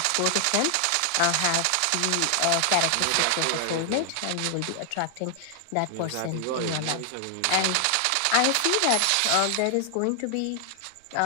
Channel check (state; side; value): different; both; correlation 0.00